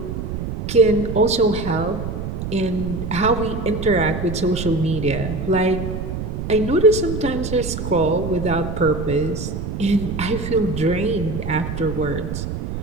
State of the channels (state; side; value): noise; right; rumble, 5 dB below the sound